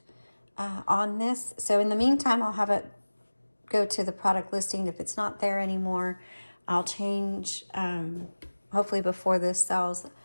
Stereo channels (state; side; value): inverted; both; correlation -1.00